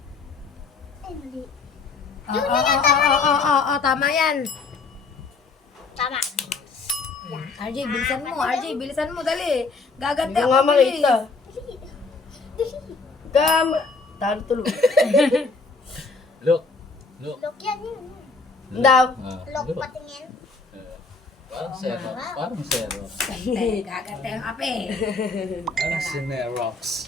Ay, mali. Oo, tama yan. Tama. RJ, bilisan mo. RJ, bilisan mo. Dali. Gaganti Hindi ako. nga bilis. makita. Dali. Talo tulo. Look. Look. Look yan, yun. Daw. Look Look. patingin. Parang Xerox. Parang Xerox. Gaganti ang ape. Parang Xerox.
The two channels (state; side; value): quieter; right; 4.2 dB